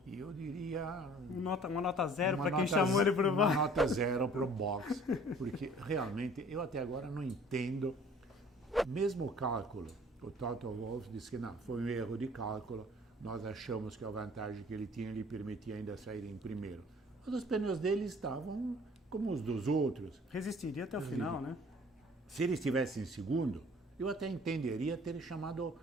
e eu diria... Uma nota 0 para quem chamou ele para o box. Uma nota 0 para o box, porque realmente eu até agora não entendo. Mesmo o cálculo, o Toto Wolff disse que não, foi um erro de cálculo, nós achamos que a vantagem que ele tinha lhe permitia ainda sair em primeiro. Mas os pneus dele estavam como os dos outros. Resistiria até o final, né? Se ele estivesse em segundo, eu até entenderia ter chamado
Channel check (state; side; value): normal; both; correlation 0.52